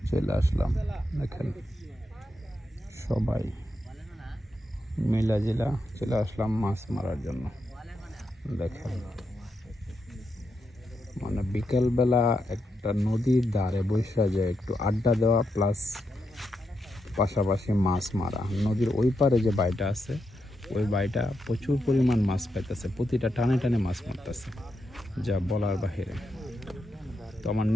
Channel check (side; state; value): both; normal; correlation 0.84